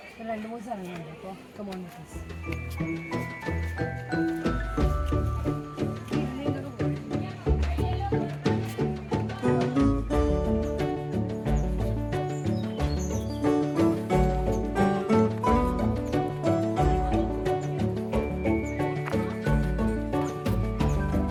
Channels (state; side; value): identical; both; correlation 1.00